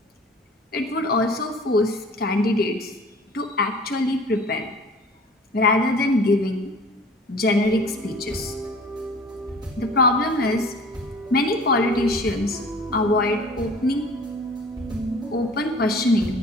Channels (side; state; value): both; normal; correlation 0.46